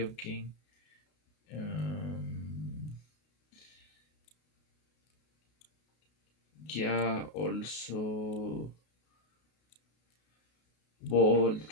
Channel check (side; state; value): right; late; 33 ms